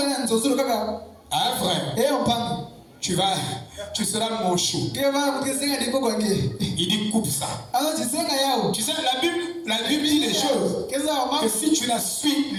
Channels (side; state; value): both; identical; correlation 1.00